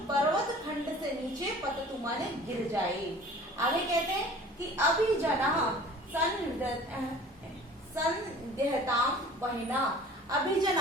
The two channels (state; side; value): normal; both; correlation 0.46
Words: पर्वत खंड से नीचे पततु माने गिर जाए। आगे कहते हैं कि अभिजना संदेहताम वहिना, अभिजना,